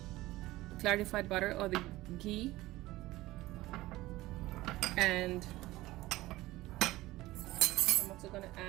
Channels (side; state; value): left; quieter; 18.0 dB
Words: clarified butter or the ghee, and I'm also going to